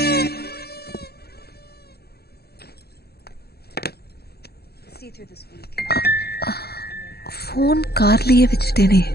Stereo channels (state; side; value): late; right; 0.46 ms